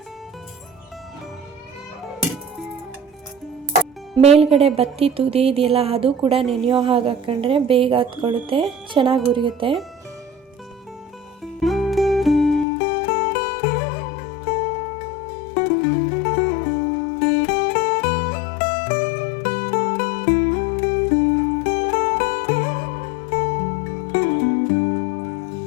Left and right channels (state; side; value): drops out; right; at 12.7 s